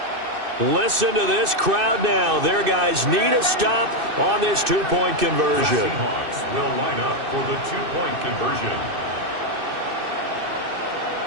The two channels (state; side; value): late; left; 2.6 ms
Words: Listen to this crowd now. Their guys need a stop on this two-point conversion. The Seahawks will line up for the two-point conversion.